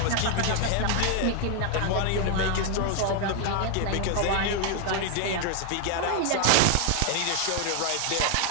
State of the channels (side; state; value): both; different; correlation 0.00